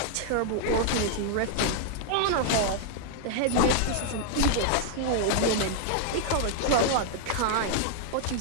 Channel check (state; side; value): different; both; correlation 0.00